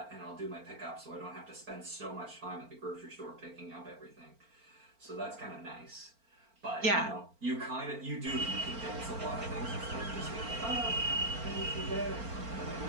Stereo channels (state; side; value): late; left; 4.4 ms